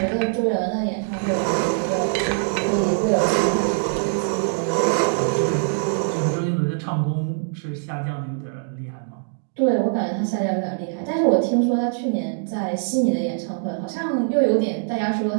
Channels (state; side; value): silent; left; digital silence